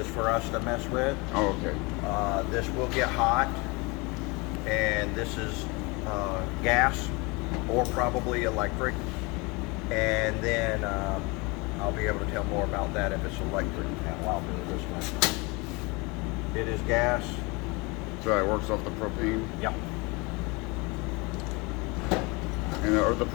for us to mess with. Oh, okay. This will get hot, and this is gas. or probably electric. And then I'll be able to tell more about that if it's electric panel. I'll do it this way. It is gas. So it works off the propane. Yep. And are the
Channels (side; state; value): right; quieter; 27.0 dB